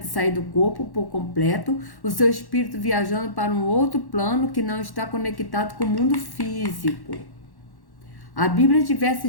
sair do corpo por completo, o seu espírito viajando para um outro plano que não está conectado com o mundo físico. A Bíblia diversa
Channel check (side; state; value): right; late; 1.1 ms